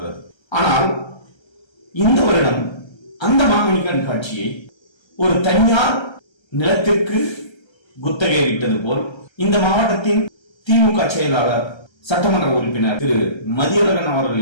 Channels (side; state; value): right; late; 1.3 ms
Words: ஆனால் இந்த வருடம் அந்த மாங்கனி கண்காட்சியை ஒரு தனியார் நிலத்திற்கு குத்தகை விட்டது போல் இந்த மாவட்டத்தின் திமுக செயலாளர் சட்டமன்ற உறுப்பினர் திரு மதியழகன்